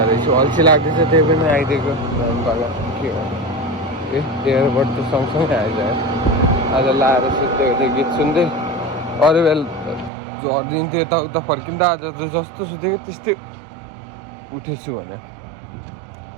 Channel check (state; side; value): drops out; left; at 10.1 s